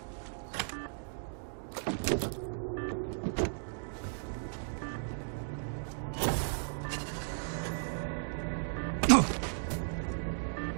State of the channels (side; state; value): left; silent; digital silence